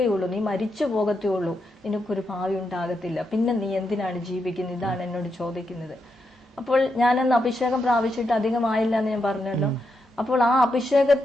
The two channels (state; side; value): normal; both; correlation 0.83